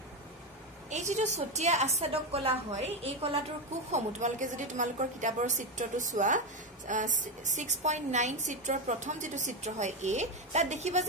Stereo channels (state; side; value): normal; both; correlation 0.12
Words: এই যেটো ছটিয়া আচ্ছাদক কলা হয়, এই কলাটোৰ কোষসমূহ তোমালোকে যদি তোমালোকৰ কিতাপৰ চিত্ৰটো চোৱা, 6.9 চিত্ৰৰ প্ৰথম যেটো চিত্ৰ হয় তাত দেখিবা